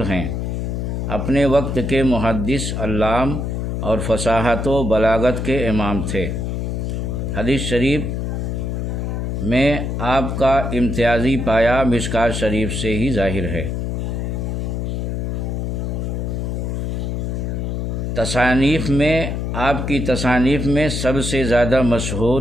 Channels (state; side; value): noise; left; hum, 2 dB below the sound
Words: ہیں۔ اپنے وقت کے محدث، علام اور فصاحت و بلاغت کے امام تھے۔ حدیث شریف میں آپ کا امتیازی پایہ مشکوٰۃ شریف سے ہی ظاہر ہے۔ تصانیف میں آپ کی تصانیف میں سب سے زیادہ